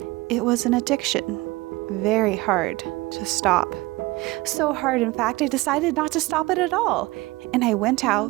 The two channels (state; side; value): quieter; left; 20.9 dB